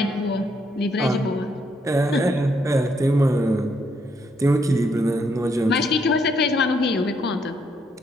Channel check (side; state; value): both; normal; correlation 0.74